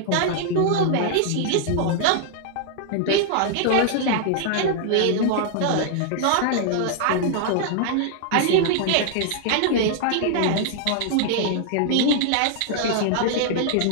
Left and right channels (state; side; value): different; both; correlation -0.01